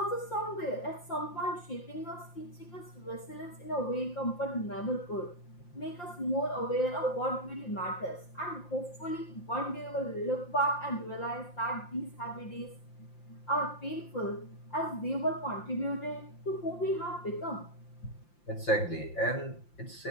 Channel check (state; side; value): late; right; 5.8 ms